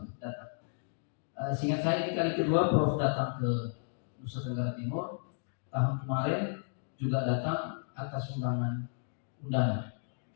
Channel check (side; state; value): right; silent; digital silence